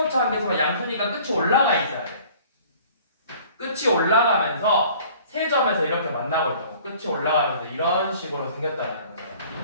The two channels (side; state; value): both; inverted; correlation -0.51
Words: 한계수가 양수니까 끝이 올라가 있어야 돼. 끝이 올라가면서 세 점에서 이렇게 만나고 있다고. 끝이 올라가면서 이런 식으로 생겼다는 거예요.